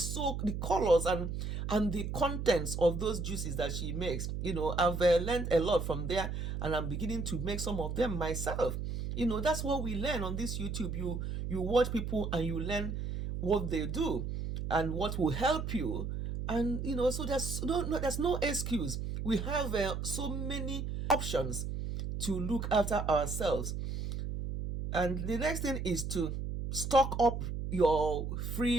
so the colors and the contents of those juices that she makes. I've learned a lot from there, and I'm beginning to make some of them myself. That's what we learn on this YouTube. You watch people and you learn what they do and what will help you. And so there's no excuse. We have so many options to look after ourselves. And the next thing is to stock up your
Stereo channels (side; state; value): right; noise; hum, 4 dB below the sound